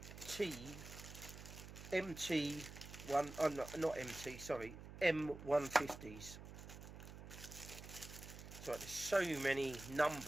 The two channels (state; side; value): noise; right; hum, 12 dB below the sound